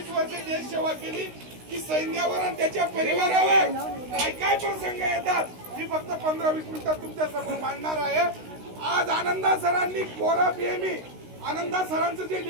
वर्ष देश सेवा केली की सैन्यावर आणि त्याच्या परिवारावर काय काय प्रसंग येतात मी फक्त 15-20 मिनिटात तुमच्या समोर मांडणार आहे। आज आनंदा सरांनी कोरा पीएमई, आनंदा सरांचं जे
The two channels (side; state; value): left; late; 16 ms